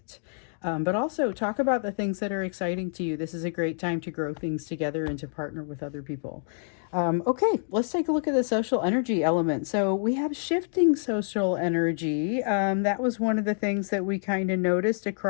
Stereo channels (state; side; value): silent; right; digital silence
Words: But also talk about the things that are exciting to you. This is a great time to grow things together and to partner with other people. Okay, let's take a look at the social energy element. So we have shifting social energy. That was one of the things that we kind of noticed